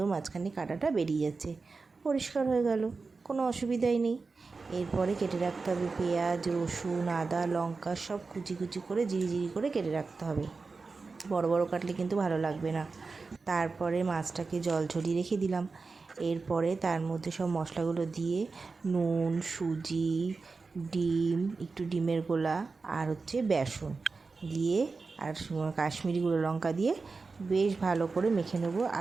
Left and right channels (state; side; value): quieter; left; 4.2 dB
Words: মাঝখানে কাঁটাটা বেরিয়ে যাচ্ছে, পরিষ্কার হয়ে গেল, কোনো অসুবিধাই নেই। এরপরে কেটে রাখতে হবে পেঁয়াজ, রসুন, আদা, লঙ্কা সব কুচি কুচি করে জিরি করে কেটে রাখতে হবে। বড় বড় কাটলে কিন্তু ভালো লাগবে না। তারপরে মাছটাকে জল ঝরিয়ে রেখে দিলাম। এরপরে তার মধ্যে সব মশলাগুলো দিয়ে নুন, সুজি, ডিম, একটু ডিমের গোলা আর বেসন দিয়ে আর কাশ্মীরি গুঁড়ো লঙ্কা দিয়ে বেশ ভালো করে মেখে নেবো